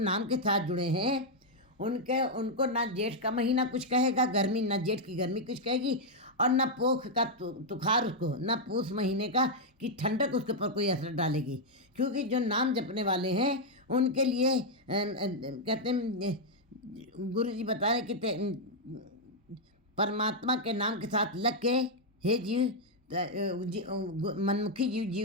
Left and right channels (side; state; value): both; normal; correlation -0.02